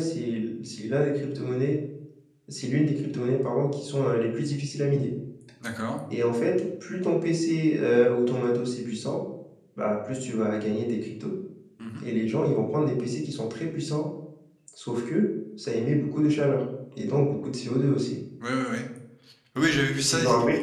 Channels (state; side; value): identical; both; correlation 1.00